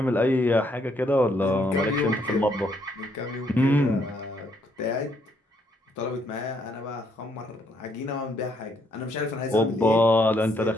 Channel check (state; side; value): normal; both; correlation 0.71